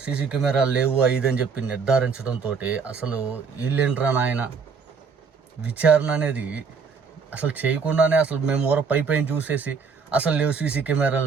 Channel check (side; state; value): left; quieter; 5.5 dB